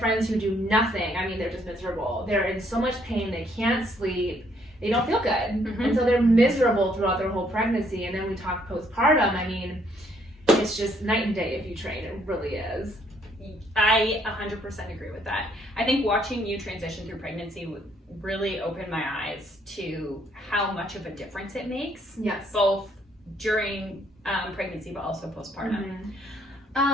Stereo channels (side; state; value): both; normal; correlation 0.68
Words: who do nothing. I mean, they're just miserable. They're in so much pain, they can't sleep, they don't feel good, and so they're miserable throughout their whole pregnancy. And then we talk postpartum. I mean, it's just night and day if you train. It really is. I 100% agree with that. I think watching you transition through pregnancy really opened my eyes to how much of a difference it makes. Yes. Both during pregnancy, but also postpartum.